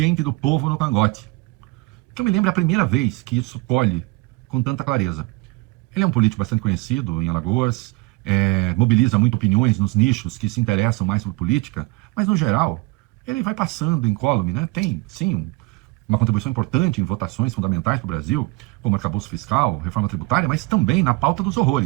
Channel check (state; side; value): quieter; left; 23.7 dB